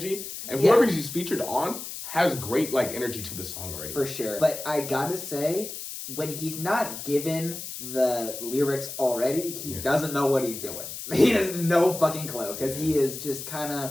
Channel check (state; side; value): noise; left; hiss, 9 dB below the sound